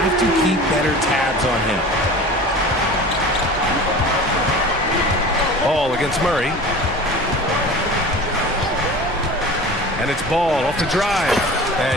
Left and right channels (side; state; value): both; normal; correlation 0.38